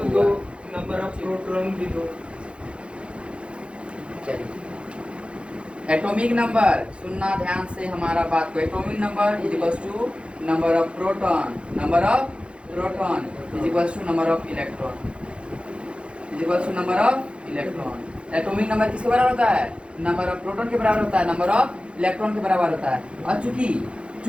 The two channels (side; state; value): left; late; 0.058 ms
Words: नंबर ऑफ प्रोटॉन भी दो। चलिए एटॉमिक नंबर सुनना ध्यान से हमारा बात को। Atomic number is equals to number of proton, number of proton is equals to number of electron, is equals to number of electron. Atomic number किसके बराबर होता है? नंबर ऑफ प्रोटॉन के बराबर होता है, नंबर ऑफ इलेक्ट्रॉन के बराबर होता है। और